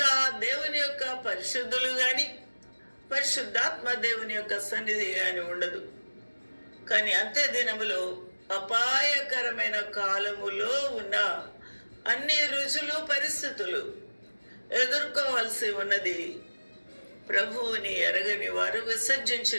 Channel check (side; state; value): both; inverted; correlation -1.00